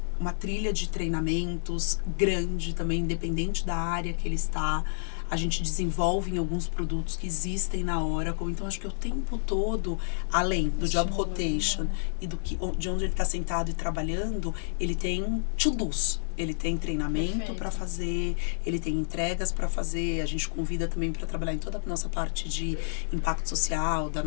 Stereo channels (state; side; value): silent; right; digital silence